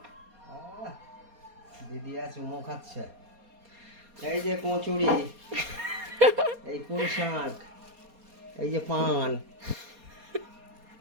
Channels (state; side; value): late; left; 4.2 ms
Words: দিদি চুমো খাচ্ছে। এই যে কচুরি, এই পুঁই শাক, এই যে পান।